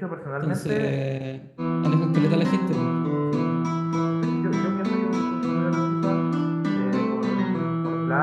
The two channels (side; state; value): both; identical; correlation 1.00